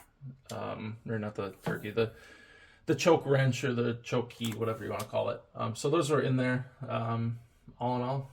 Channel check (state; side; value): identical; both; correlation 1.00